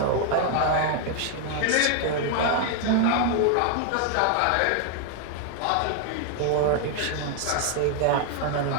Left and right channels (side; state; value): both; different; correlation 0.00